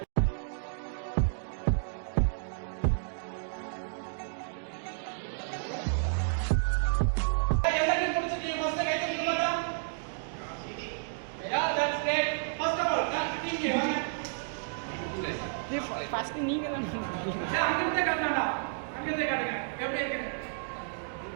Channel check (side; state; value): left; silent; digital silence